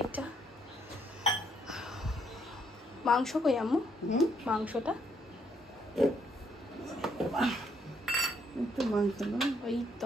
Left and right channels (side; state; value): both; normal; correlation 0.71